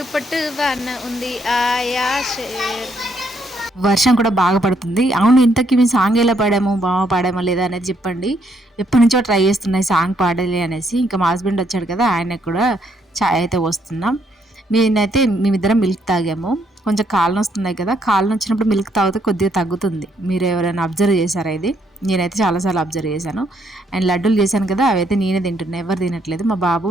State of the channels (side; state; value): both; normal; correlation 0.72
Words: పొట్టు వాన ఉంది ఆయాష. వర్షం కూడా బాగా పడుతుంది. అవును, ఇంతకీ మేము సాంగ్ ఎలా పాడాము, బాగా పాడామా లేదా అనేది చెప్పండి. ఎప్పటి నుంచో ట్రై చేస్తున్నాయి సాంగ్ పాడాలి అనేసి. ఇంకా మా హస్బెండ్ వచ్చాడు కదా, ఆయనకు కూడా ఛాయ్ అయితే వస్తున్నాం. మేమిద్దరం మిల్క్ తాగాము. కొంచెం కాళ్ళు వస్తున్నాయి కదా, కాళ్ళు వచ్చినప్పుడు మిల్క్ తాగితే కొద్దిగా తగ్గుతుంది. మీరు ఎవరైనా అబ్జర్వ్ చేశారా ఇది? నేనైతే చాలాసార్లు అబ్జర్వ్ చేశాను. అండ్ లడ్డూలు చేశాను కదా, అవైతే నేనే తింటున్నాను, ఎవరు తినట్లేదు. మా బాబు